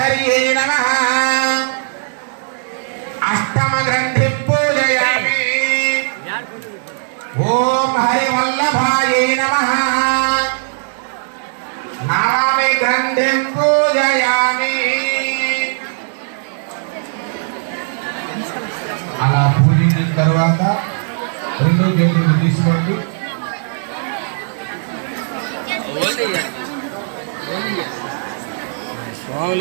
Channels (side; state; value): left; silent; digital silence